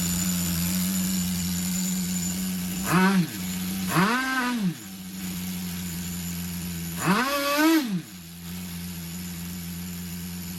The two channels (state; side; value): identical; both; correlation 1.00